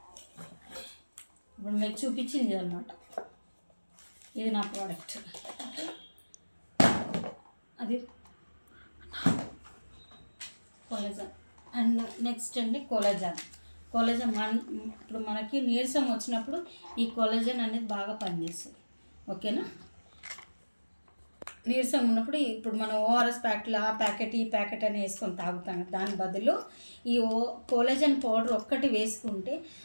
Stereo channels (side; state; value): both; inverted; correlation -1.00